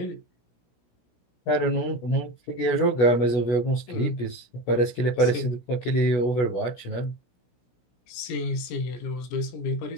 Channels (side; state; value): right; late; 16 ms